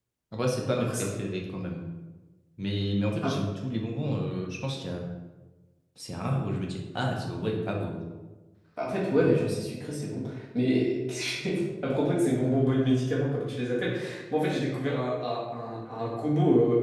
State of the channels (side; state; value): both; identical; correlation 1.00